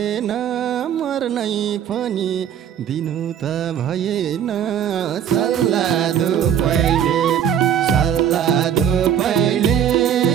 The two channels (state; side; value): quieter; left; 9.2 dB